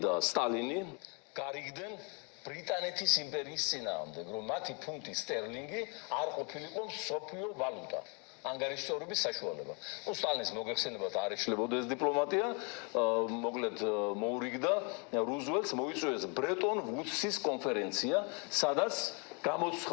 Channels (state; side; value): quieter; right; 34.1 dB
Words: სტალინი გარიგდნენ ბრიტანეთის იმპერიის წინააღმდეგ, რომ მათი ფუნტი სტერლინგი არ ყოფილიყო მსოფლიო ვალუტა. ანგარიშწორების საშუალება. სტალინის მოგეხსენებათ არ ეშლებოდა ეს დიპლომატია, მოკლედ მოურიგდა რუზველტს მოიწვიეს ბრეტონ ვუდსის კონფერენცია, სადაც